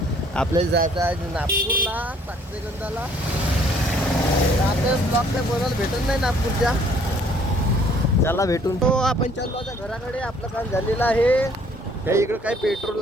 आपल्याला जायचं आहे नागपूरला साक्षीगंधाला. आपल्याला ब्लॉक काय बोलायला भेटत नाही नागपूरच्या. चला भेटून. तो आपण चाललो आता घराकडे. आपलं काम झालेलं आहे. काही इकडं काही पेट्रोल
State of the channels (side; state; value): both; normal; correlation 0.60